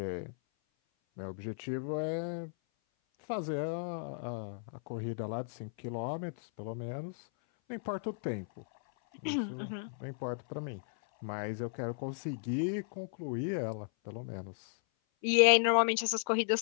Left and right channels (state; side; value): silent; right; 55 dB below the other